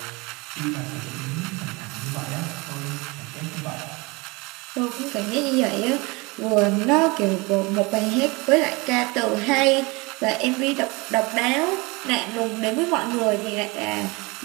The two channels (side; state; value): left; quieter; 25.8 dB